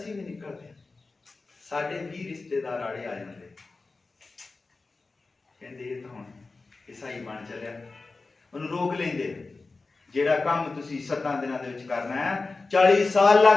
ਵੀ ਨਿਕਲਦੇ ਸਾਡੇ ਵੀ ਰਿਸ਼ਤੇਦਾਰ ਆੜੇ ਆ ਜਾਂਦੇ, ਕਹਿੰਦੇ ਇਹ ਤਾਂ ਹੁਣ ਈਸਾਈ ਬਣ ਚੱਲਿਆ, ਉਹਨੂੰ ਰੋਕ ਲੈਂਦੇ। ਜਿਹੜਾ ਕੰਮ ਤੁਸੀਂ 7 ਦਿਨਾਂ ਦੇ ਵਿੱਚ ਕਰਨਾ ਹੈ 40 ਸਾਲ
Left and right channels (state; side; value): quieter; right; 3.8 dB